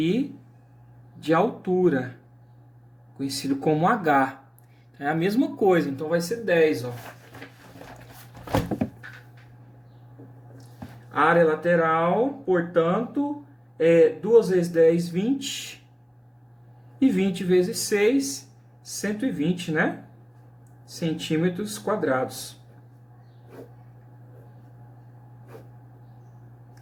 de altura, conhecido como H. É a mesma coisa, então vai ser 10, ó. A área lateral, portanto, é 2 vezes 10, 20. E 20 vezes 6, 120, né? Centímetros quadrados.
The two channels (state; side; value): identical; both; correlation 1.00